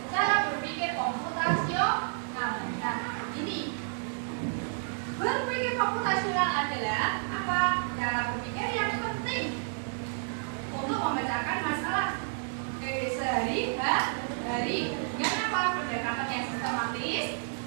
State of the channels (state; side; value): silent; left; digital silence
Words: cara berpikir komputasional. Nah, ini berpikir komputasional adalah apa? Cara berpikir yang penting untuk memecahkan masalah sehari-hari dengan apa? Pendekatan yang sistematis,